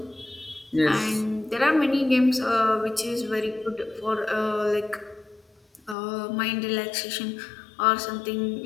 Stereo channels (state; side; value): drops out; right; at 6.0 s